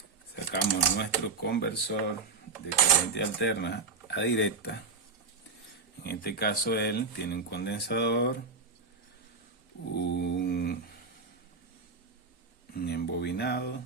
Sacamos nuestro conversor de corriente alterna a directa. En este caso él tiene un condensador, un embobinado,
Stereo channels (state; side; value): quieter; left; 4.4 dB